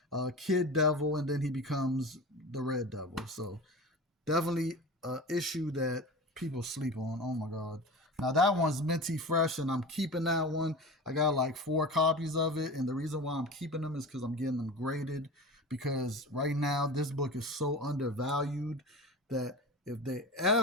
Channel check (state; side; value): normal; both; correlation 0.32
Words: Kid Devil, and then he becomes the Red Devil. So definitely an issue that people sleep on. Oh my god. Now that one's minty fresh, and I'm keeping that one. I got like 4 copies of it, and the reason why I'm keeping them is because I'm getting them graded. Because right now this book is so undervalued that if they